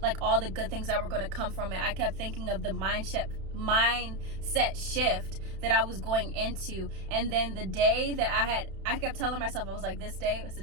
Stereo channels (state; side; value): late; left; 31 ms